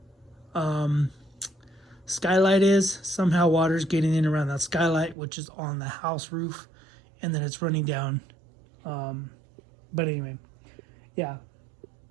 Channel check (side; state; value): left; drops out; at 5.2 s